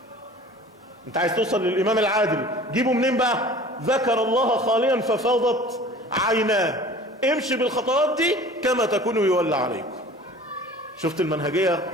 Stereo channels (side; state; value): both; normal; correlation 0.44